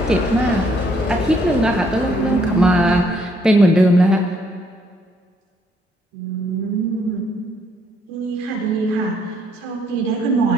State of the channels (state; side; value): normal; both; correlation 0.70